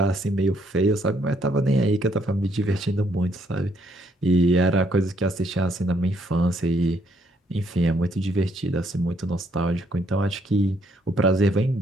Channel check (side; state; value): both; normal; correlation 0.70